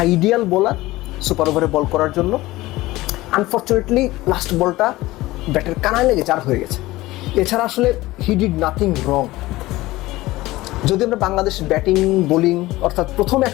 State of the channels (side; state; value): right; quieter; 18.4 dB